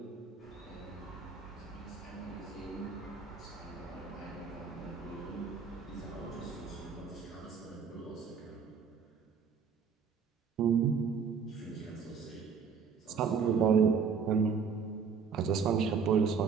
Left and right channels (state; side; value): quieter; left; 6.0 dB